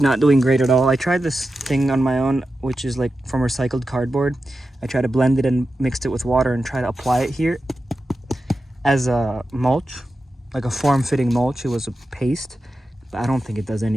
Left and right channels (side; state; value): both; normal; correlation 0.91